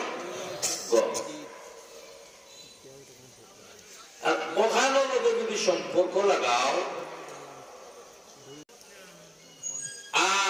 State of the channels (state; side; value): identical; both; correlation 1.00